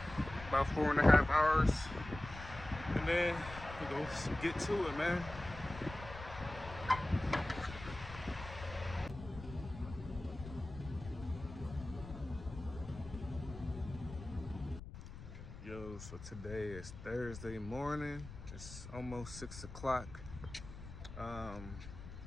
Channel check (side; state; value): left; noise; rumble, 12 dB below the sound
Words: about 4.5 hours, and then we go get to it, man. Yo, so today is Thursday morning. It's almost 6 o'clock.